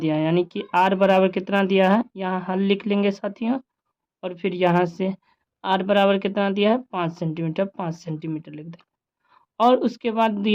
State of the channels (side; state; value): both; identical; correlation 1.00